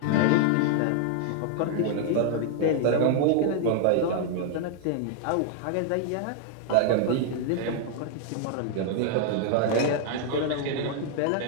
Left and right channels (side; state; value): both; different; correlation 0.00